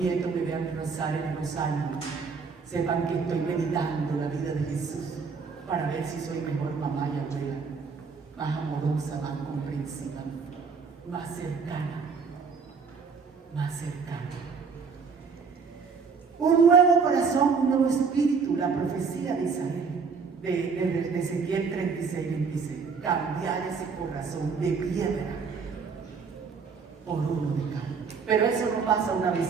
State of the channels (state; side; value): quieter; left; 5.3 dB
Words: nieto me vean rezar en los años, sepan que estoy meditando la vida de Jesús para ver si soy mejor mamá y abuela, más amorosa, más comprensiva, más cercana, más cercana. Un nuevo corazón, un nuevo espíritu, la profecía de Isabel, de Ezequiel 36:26. Cambiar ese corazón de piedra por uno de carne. Pero eso no pasa una